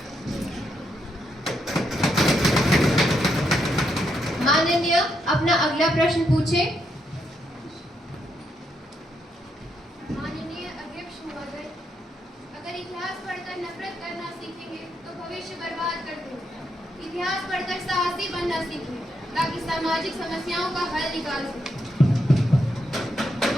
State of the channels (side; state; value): both; normal; correlation 0.79